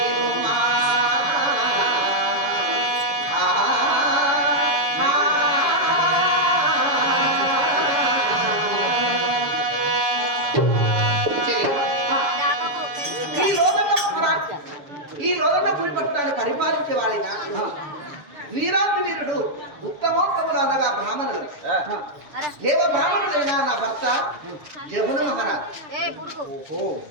ఈ లోదన్న పులి పట్టణాన్ని పరిపాలించే వాడిగా వీరాతి వీరుడు ఉత్తమోత్తములు అనగా బ్రాహ్మణులు. దేవ బ్రాహ్మణుడైన నా భర్త జమున మహారాజ్.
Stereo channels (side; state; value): left; late; 7.0 ms